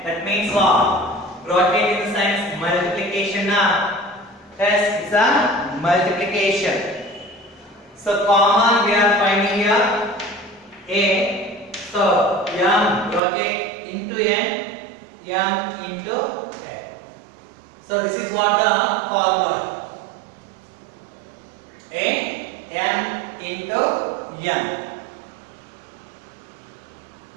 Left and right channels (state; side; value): drops out; left; at 13.2 s